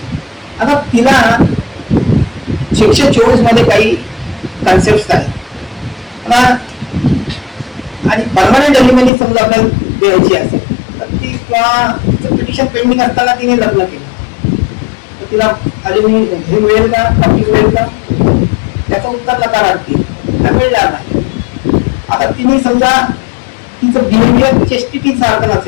आता तिला 624 मध्ये काही कन्सेप्ट आहेत आणि परमनंट अलिमिनी समजा आपल्याला द्यायची असेल तर ती किंवा पिटिशन पेंडिंग असताना तिने लग्न केलं तर तिला अलिमिनी हे मिळेल का, खावती मिळेल का? त्याचं उत्तर नकारार्थी, मिळणार नाही. आता तिने समजा तिचं बिहेवियर चेस्टिटी सारखं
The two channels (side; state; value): right; drops out; at 9.1 s